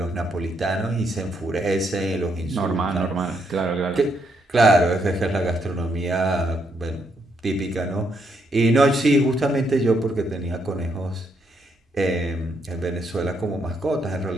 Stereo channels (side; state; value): both; normal; correlation 0.76